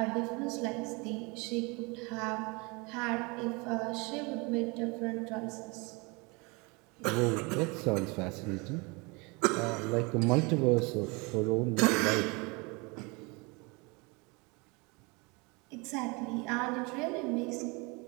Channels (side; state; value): left; quieter; 28.3 dB